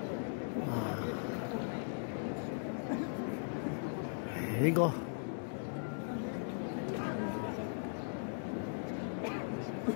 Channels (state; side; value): silent; right; digital silence